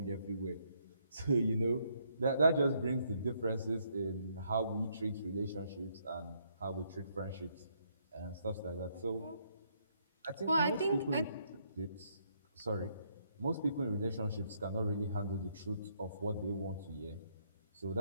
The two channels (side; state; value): both; inverted; correlation -0.72